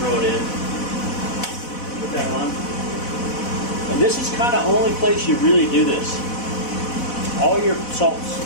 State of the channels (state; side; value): late; right; 4.1 ms